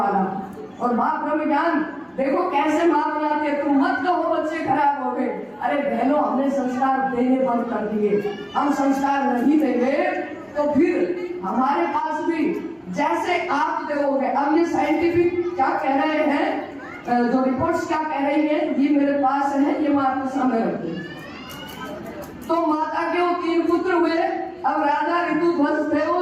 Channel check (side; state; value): both; identical; correlation 1.00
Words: और माँ ब्रह्म ज्ञान, देखो कैसे माँ बनाते, तुम मत कहो बच्चे खराब हो गए। अरे बहनों, हमने संस्कार देने बंद कर दिए। हम संस्कार नहीं देंगे तो फिर हमारे पास भी जैसे आप देखोगे। अब ये साइंटिफिक क्या कह रहे हैं, जो रिपोर्ट्स क्या कह रही है, ये मेरे पास है, ये मैं आपको सामने रखती हूँ। तो माता के वो 3 पुत्र हुए। अब राजा ऋतुध्वज थे, वो